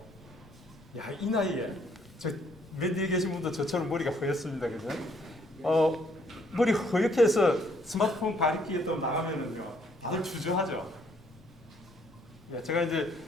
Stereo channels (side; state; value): both; normal; correlation 0.66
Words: 이 나이에 맨 뒤에 계신 분도 저처럼 머리가 허였습니다, 그죠? 머리 허옇게 해서 스마트폰 가리키에 또 나가면은요, 다들 주저하죠. 제가 이제